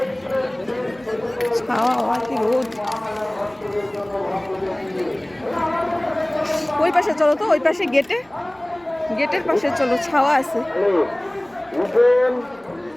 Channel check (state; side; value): noise; right; rumble, 30 dB below the sound